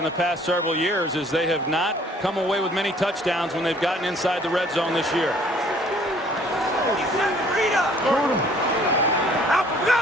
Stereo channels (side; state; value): both; normal; correlation 0.57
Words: the past several years, is they have not come away with many touchdowns when they've gotten inside the red zone this year.